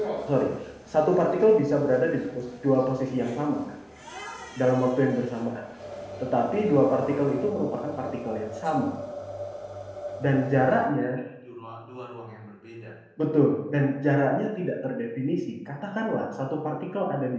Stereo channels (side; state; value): both; identical; correlation 1.00